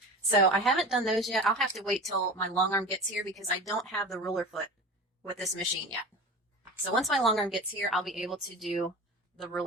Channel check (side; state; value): both; normal; correlation 0.33